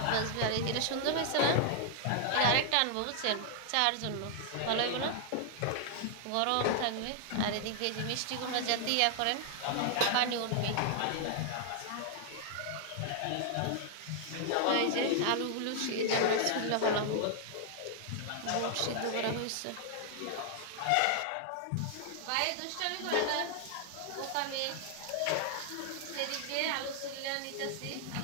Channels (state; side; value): different; both; correlation 0.00